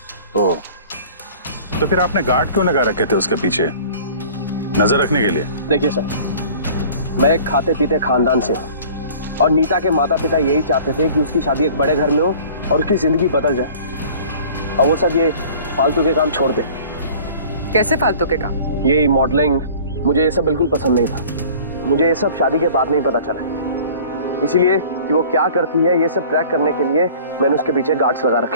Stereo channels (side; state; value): both; inverted; correlation -0.47